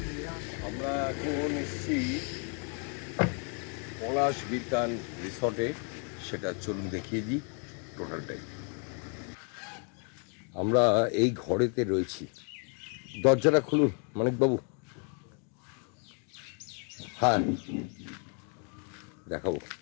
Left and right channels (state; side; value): quieter; right; 39.9 dB